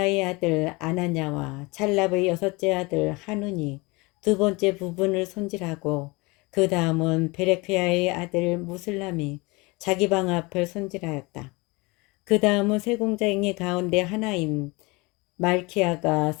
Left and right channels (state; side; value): quieter; right; 25.4 dB